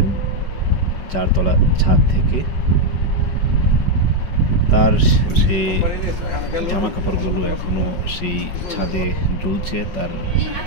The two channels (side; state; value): right; late; 5.4 ms